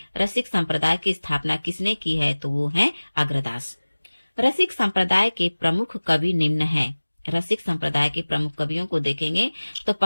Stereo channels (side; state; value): both; inverted; correlation -1.00